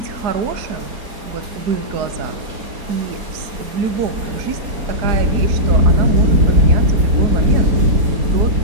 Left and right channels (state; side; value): late; left; 4.9 ms